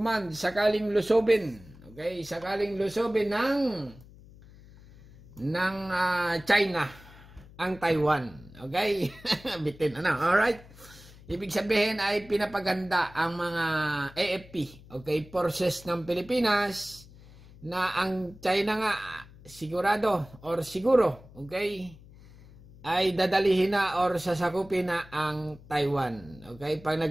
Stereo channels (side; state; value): left; noise; hum, 21 dB below the sound